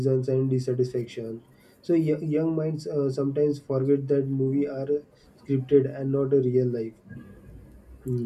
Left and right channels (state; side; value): identical; both; correlation 1.00